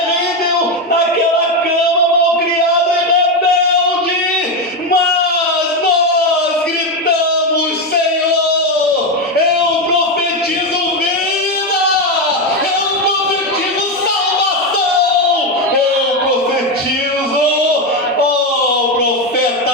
naquela cama, mal criado e rebelde, mas nós gritamos, Senhor, eu profetizo vida, eu profetizo salvação, eu profetizo, profeta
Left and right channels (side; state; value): both; normal; correlation 0.10